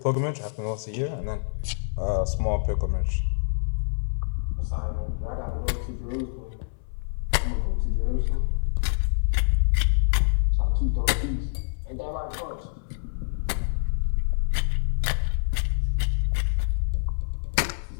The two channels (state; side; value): silent; right; 61 dB below the other